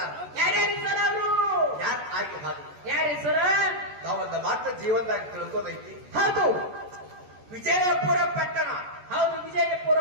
ಯಾರ್ಯಾರು ಸರ್ ಅವರು? ಯಾರು ಆಗಿ ಹಾಗೆ ಯಾರಿ ಸರ? ತಾವೊಂದು ಮಾತ್ರ ಜೀವನದಾಗ ತಿಳ್ಕೋದೈತಿ. ಹೌದು, ವಿಜಯಪುರ ಪಟ್ಟಣ. ಹೌದು, ವಿಜಯಪುರ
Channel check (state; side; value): late; left; 14 ms